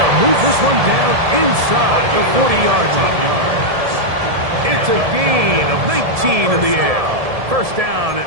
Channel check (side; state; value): left; late; 1.7 ms